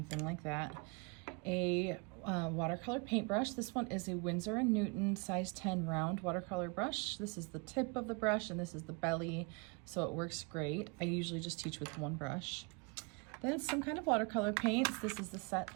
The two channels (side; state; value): left; quieter; 31.1 dB